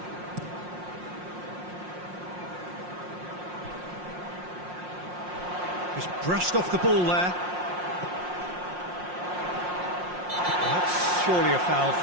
Just brushed off the ball there. Well, that's surely a foul.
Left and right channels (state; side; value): late; left; 5.6 ms